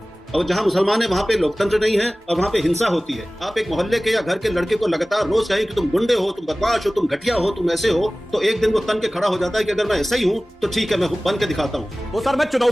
और जहां मुसलमान है वहां पे लोकतंत्र नहीं है और वहां पे हिंसा होती है। आप एक मोहल्ले के या घर के लड़के को लगातार रोज कहें कि तुम गुंडे हो, तुम बदमाश हो, तुम घटिया हो, तुम ऐसे हो, तो एक दिन वो तन के खड़ा हो जाता है कि अगर मैं ऐसा ही हूं तो ठीक है, मैं बन के दिखाता हूं। तो सर मैं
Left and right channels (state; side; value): normal; both; correlation 0.98